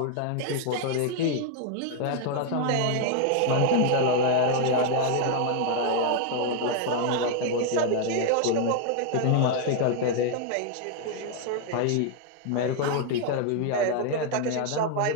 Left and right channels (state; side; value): different; both; correlation 0.00